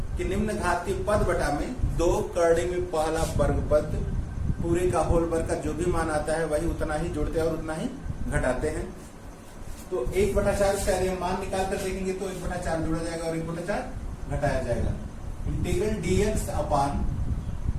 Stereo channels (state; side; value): identical; both; correlation 1.00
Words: कि निम्न घातीय पद बटा में 2 करड़ी में पहला वर्ग पद पूरे का होल वर्ग का जो भी मान आता है वही उतना ही जोड़ते हैं और उतना ही घटाते हैं। तो 1/4 इसका यदि हम मान निकाल कर देखेंगे तो 1/4 जोड़ा जाएगा और 1/4 घटाया जाएगा। इंटीग्रल dx अपान